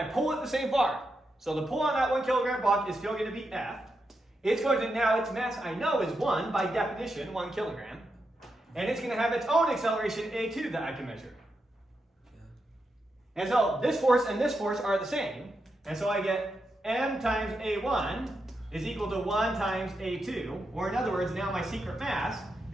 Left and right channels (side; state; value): both; normal; correlation 0.85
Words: pull it the same far. So the pull on that 1 kilogram block is still going to be F. It's going to, now its mass I know is 1 by definition, 1 kilogram. And it's going to have its own acceleration A2 that I can measure. And so this force and this force are the same. And so I get m times A1 is equal to 1 times A2. Or in other words, now my secret mass